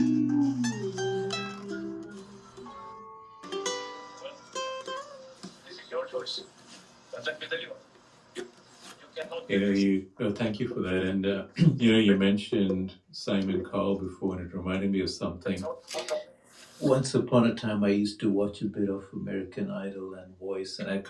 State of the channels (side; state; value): both; identical; correlation 1.00